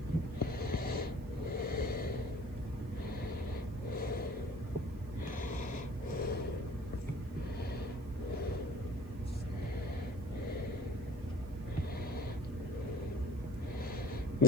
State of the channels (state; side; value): noise; right; hiss, 28 dB below the sound